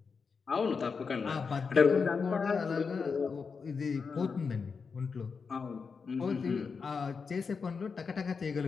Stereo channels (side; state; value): right; quieter; 5.3 dB